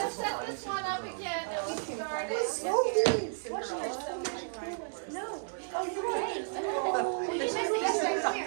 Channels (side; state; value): left; silent; digital silence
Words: set this one up again and we started. No. Oh, you're right.